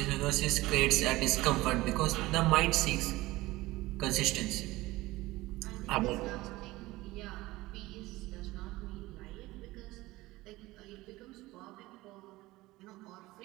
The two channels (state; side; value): quieter; left; 19.2 dB